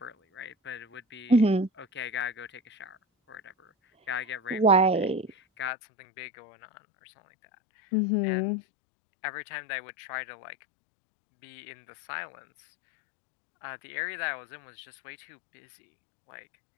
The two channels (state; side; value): drops out; right; at 5.7 s